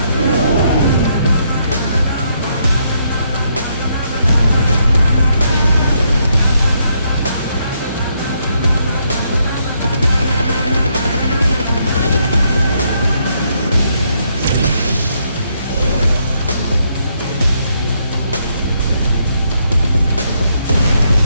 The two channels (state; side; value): inverted; both; correlation -0.75